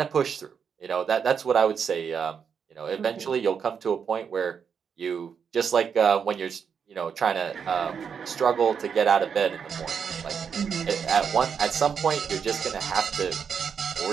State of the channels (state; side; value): quieter; left; 6.8 dB